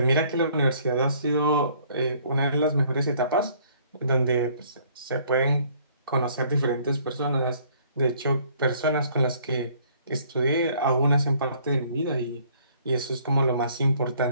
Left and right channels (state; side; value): inverted; both; correlation -0.60